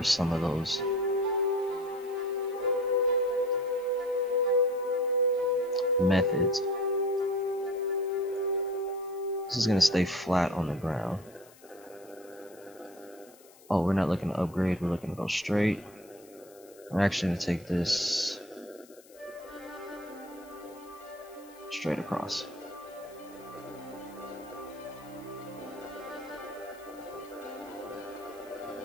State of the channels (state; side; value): noise; left; hiss, 25 dB below the sound